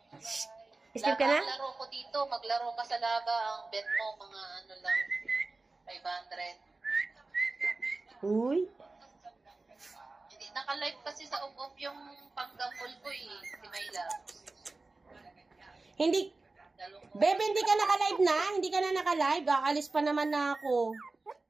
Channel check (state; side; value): quieter; left; 3.5 dB